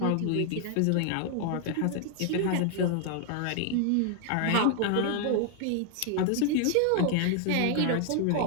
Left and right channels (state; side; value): different; both; correlation 0.00